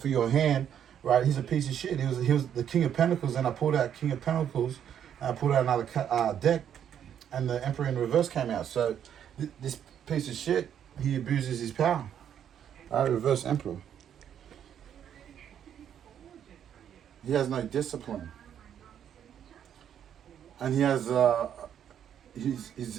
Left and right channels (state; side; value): quieter; left; 9.3 dB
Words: your hand, right? He's a piece of shit. He was the King of Pentacles, and I pulled out King of Pentacles, and I pulled out another deck, and the Emperor in reverse came out. So this piece of shit, he abuses his power. Right? Reverse Emperor. He has no discipline. And he has